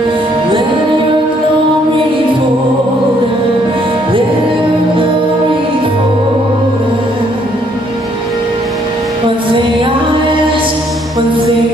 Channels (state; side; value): normal; both; correlation 0.67